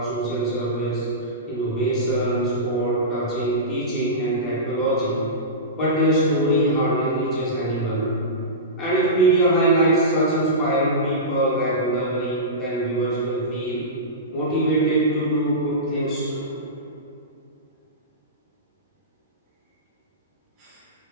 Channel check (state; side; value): normal; both; correlation -0.19